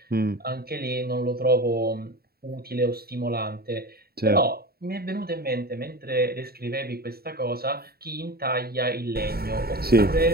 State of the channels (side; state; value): left; late; 0.45 ms